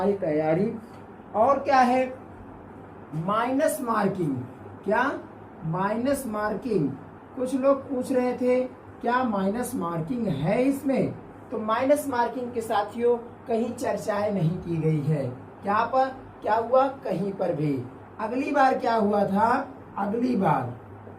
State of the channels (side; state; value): both; identical; correlation 1.00